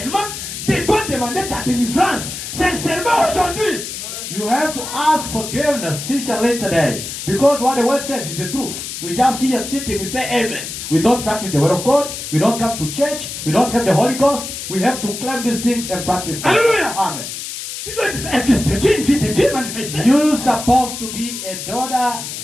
Tu dois demander ta délivrance sincèrement aujourd'hui. You have to ask forgiveness sincerely today. Because what the word says is the truth. We just here sitting, we say amen. We don't practice the word of God. We don't come to church. We don't have the Holy Ghost. We have to claim these things and practice them. Hallelujah. Amen. Tu dois être un fils de Dieu, une fille de Dieu manifestée. You're supposed to be a daughter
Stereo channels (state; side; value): noise; left; hiss, 8 dB below the sound